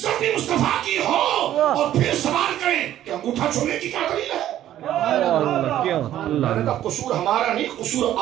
بھی مصطفیٰ کی ہو، اور پھر سوال کریں کہ انگوٹھا چھوڑنے کی کیا دلیل ہے؟ میں نے کہا قصور ہمارا نہیں، قصور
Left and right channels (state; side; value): quieter; left; 12.3 dB